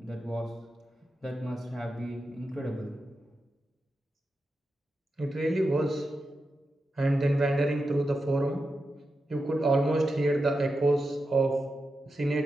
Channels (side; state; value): both; normal; correlation 0.89